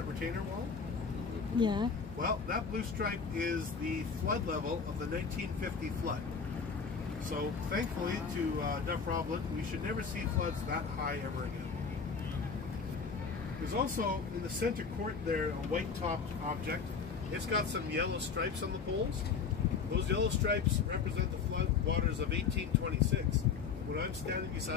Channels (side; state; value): right; quieter; 5.8 dB